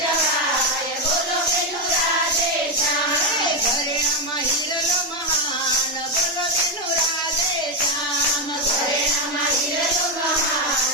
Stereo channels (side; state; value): both; normal; correlation 0.06